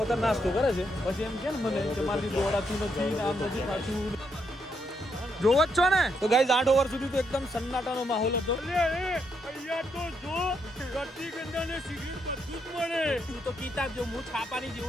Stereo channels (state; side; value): normal; both; correlation 0.78